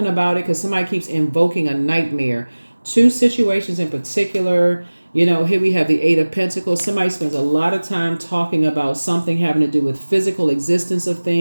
about it because somebody keeps invoking a nightmare. 2 situations in particular. You know, here we have the 8 of Pentacles. Somebody spends a lot of time talking about something having to do with physical existence of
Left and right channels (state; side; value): inverted; both; correlation -1.00